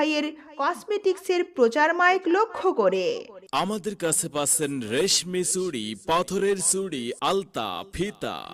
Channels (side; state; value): both; identical; correlation 1.00